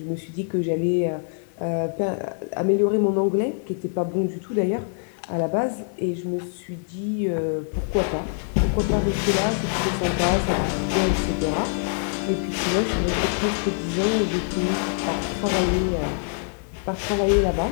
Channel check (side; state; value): right; silent; digital silence